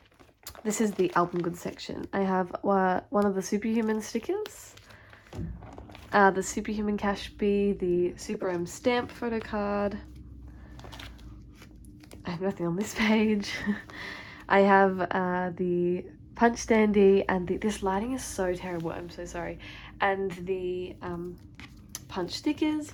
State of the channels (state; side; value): identical; both; correlation 1.00